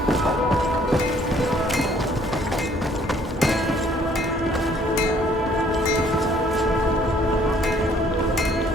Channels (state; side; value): normal; both; correlation 0.61